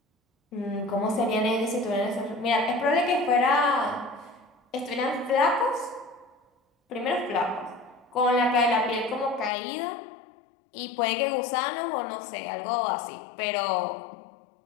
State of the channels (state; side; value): drops out; right; at 9.5 s